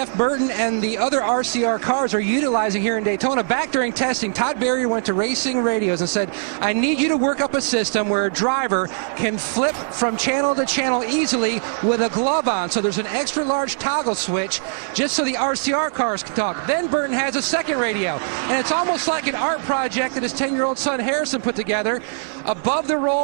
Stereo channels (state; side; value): silent; left; digital silence